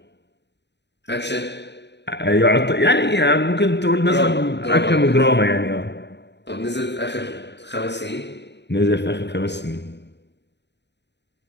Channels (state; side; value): late; right; 0.50 ms